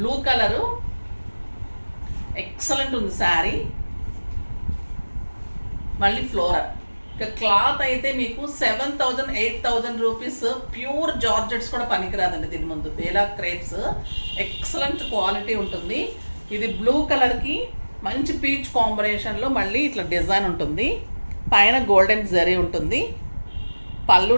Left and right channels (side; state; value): both; inverted; correlation -1.00